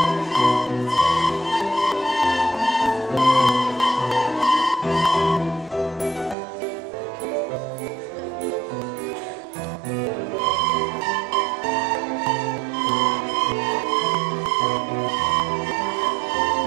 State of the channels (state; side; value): drops out; left; at 6.4 s